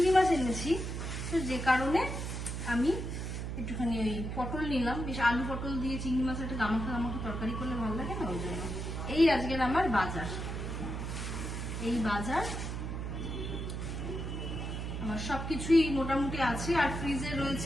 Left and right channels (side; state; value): right; noise; hum, 4 dB below the sound